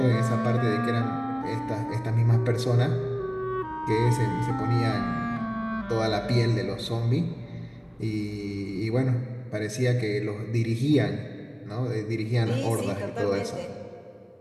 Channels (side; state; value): both; identical; correlation 1.00